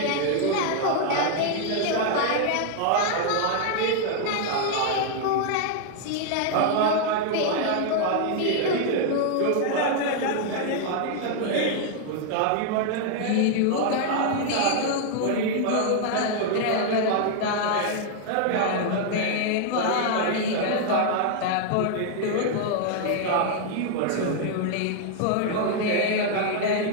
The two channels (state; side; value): different; both; correlation 0.00